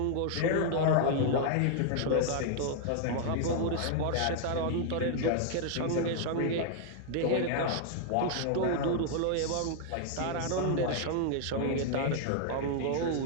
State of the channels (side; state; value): both; different; correlation 0.00